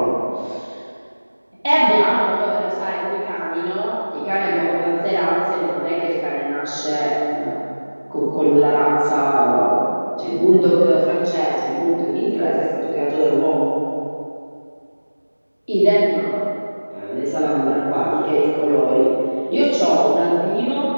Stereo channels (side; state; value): both; inverted; correlation -1.00